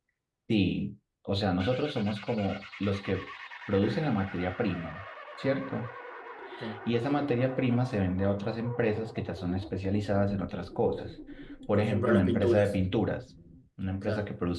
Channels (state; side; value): identical; both; correlation 1.00